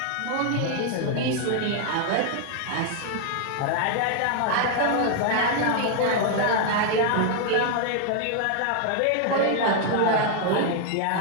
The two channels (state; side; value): different; both; correlation 0.00